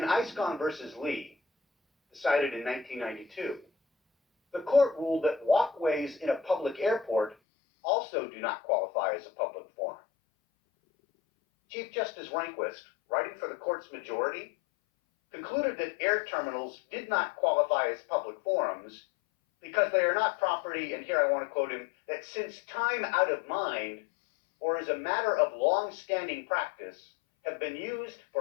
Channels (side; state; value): right; drops out; at 7.4 s